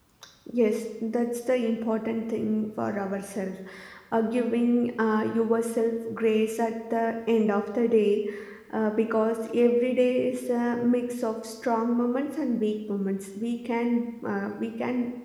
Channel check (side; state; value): both; identical; correlation 1.00